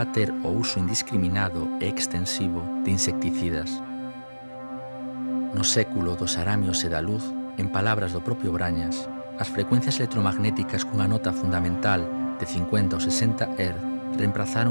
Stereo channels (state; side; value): inverted; both; correlation -1.00